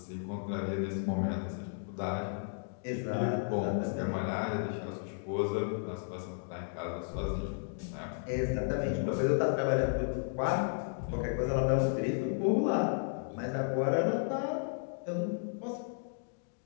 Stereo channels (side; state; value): right; silent; digital silence